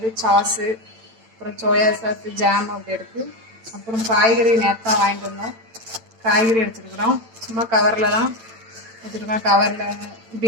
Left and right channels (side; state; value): left; late; 8.9 ms